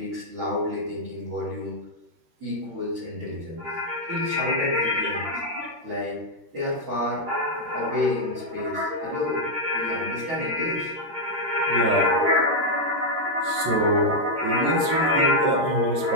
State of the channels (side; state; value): left; late; 13 ms